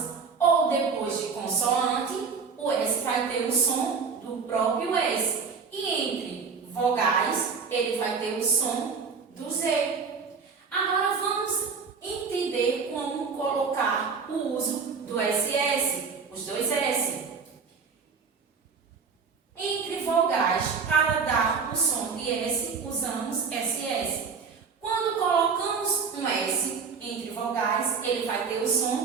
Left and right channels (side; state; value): left; quieter; 5.4 dB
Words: ou depois de consoante, o S vai ter o som do próprio S. E entre vogais, ele vai ter o som do Z. Agora vamos entender como colocar o uso do SS, os dois S. Entre vogais, para dar o som de S, usamos SS. Quando colocamos um S entre vogais, ele vai ter o